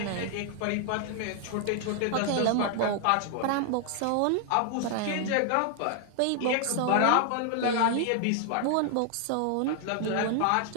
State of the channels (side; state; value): both; different; correlation 0.00